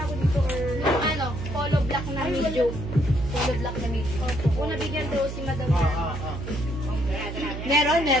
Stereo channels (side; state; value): right; noise; hum, 7 dB below the sound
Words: dito or... Yung polo black na medium. Polo black na medium. Opo, nabigyan daw si Madam Lerma. Meron.